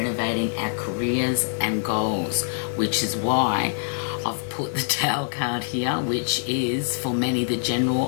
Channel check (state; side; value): silent; right; digital silence